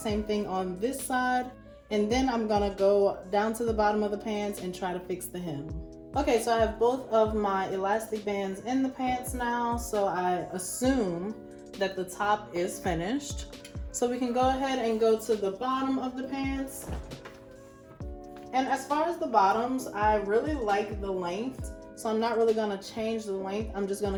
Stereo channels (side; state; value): both; identical; correlation 1.00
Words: thing on this side. And then I'm gonna go down to the bottom of the pants and try to fix the hem. Okay, so I have both of my elastic bands in the pants now. So I assume that the top is finished. So we can go ahead and go to the bottom of the pants. And as far as the bottoms, I really like the length. So I'm not really gonna change the length. I'm just gonna